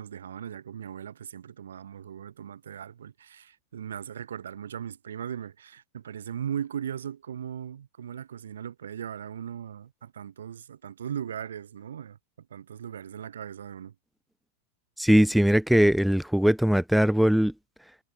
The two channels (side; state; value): both; normal; correlation 0.86